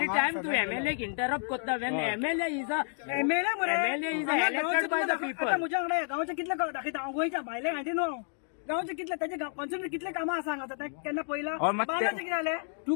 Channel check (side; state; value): right; silent; 57 dB below the other